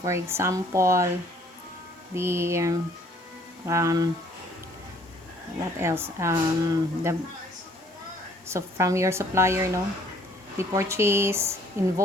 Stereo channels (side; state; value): both; normal; correlation 0.60